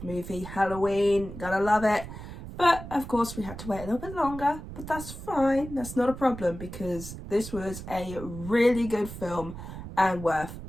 movie, Halloween, gotta love it. But of course we had to wait a little bit longer, but that's fine, that's not a problem because this was a really good film and worth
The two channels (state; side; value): noise; right; rumble, 11 dB below the sound